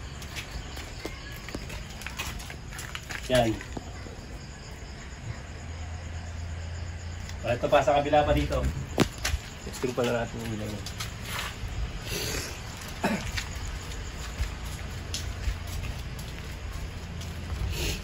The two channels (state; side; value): identical; both; correlation 1.00